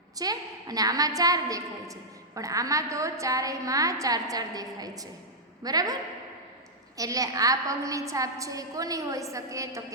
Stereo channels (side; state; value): both; normal; correlation -0.07